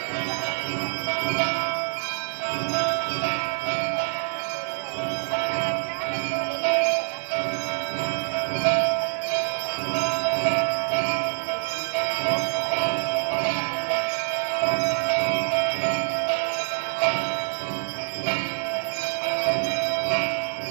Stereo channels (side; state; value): left; silent; digital silence